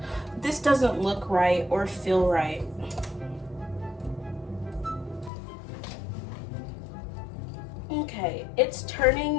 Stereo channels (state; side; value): drops out; right; at 5.3 s